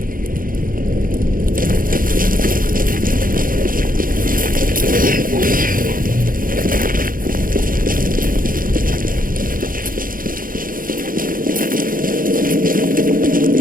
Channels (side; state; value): left; late; 0.41 ms